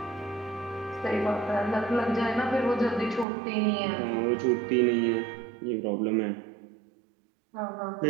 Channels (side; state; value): left; drops out; at 3.2 s